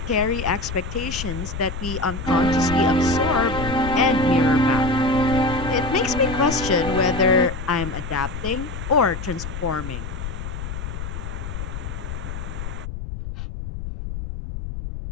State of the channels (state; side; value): noise; left; rumble, 7 dB below the sound